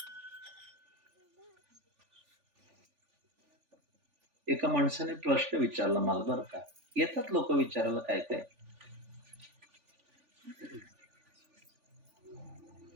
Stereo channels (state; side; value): late; left; 3.4 ms